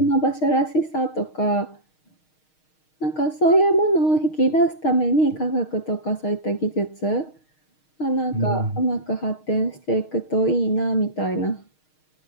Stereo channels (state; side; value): late; right; 6.4 ms